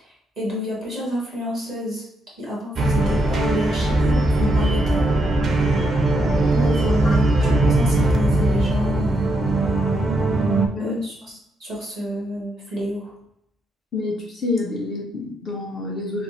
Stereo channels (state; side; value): normal; both; correlation 0.79